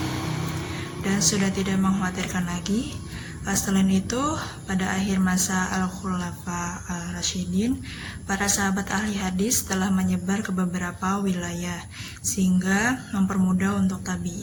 dan sudah tidak mengkhawatirkan lagi. Selain itu, pada akhir masa Al-Khulafa Al-Rasyidin, para sahabat ahli hadis telah menyebar ke beberapa wilayah sehingga mempermudah untuk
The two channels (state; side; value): identical; both; correlation 1.00